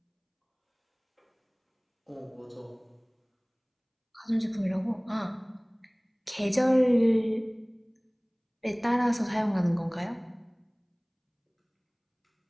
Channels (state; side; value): identical; both; correlation 1.00